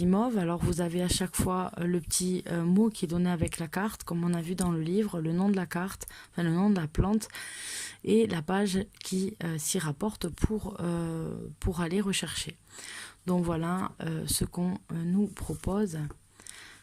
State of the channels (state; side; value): identical; both; correlation 1.00